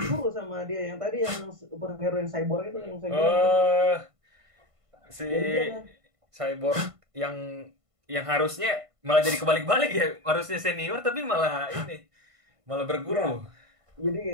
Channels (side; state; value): left; late; 1.5 ms